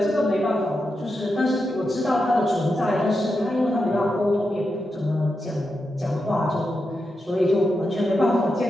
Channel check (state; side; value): normal; both; correlation 0.87